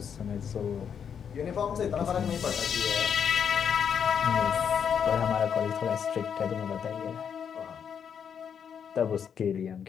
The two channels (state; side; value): quieter; right; 7.6 dB